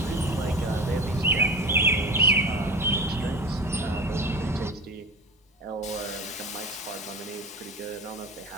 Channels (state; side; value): normal; both; correlation 0.31